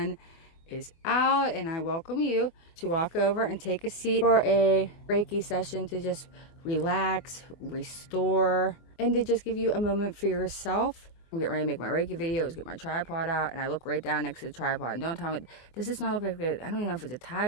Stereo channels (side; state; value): right; late; 24 ms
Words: is out, and I welcome you to walk over and take a seat for a Reiki session to just relax, restore, and to just give you a moment for yourself. I'm getting ready to make my Reiki video. Get my tripod out, and I look right down next to the tripod. And don't tell me, does this not look like I don't even know if it's a